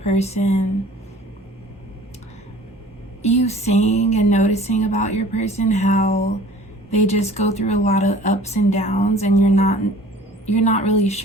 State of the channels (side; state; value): both; normal; correlation 0.48